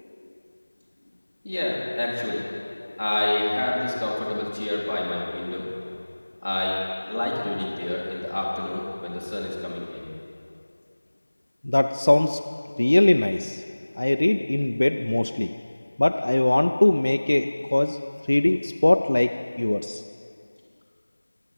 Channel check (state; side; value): inverted; both; correlation -1.00